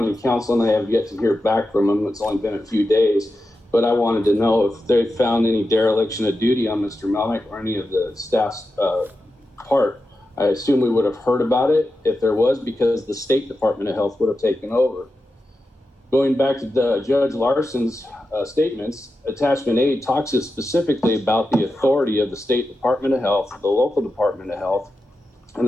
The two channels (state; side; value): normal; both; correlation 0.90